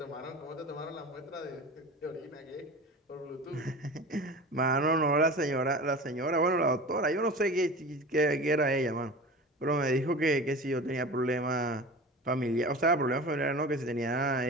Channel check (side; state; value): both; normal; correlation 0.34